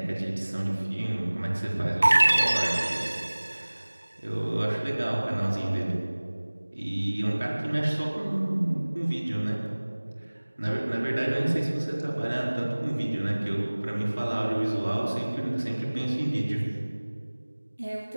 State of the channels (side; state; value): both; inverted; correlation -1.00